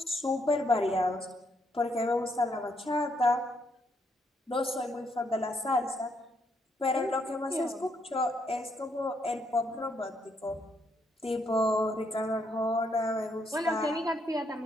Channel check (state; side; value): normal; both; correlation 0.74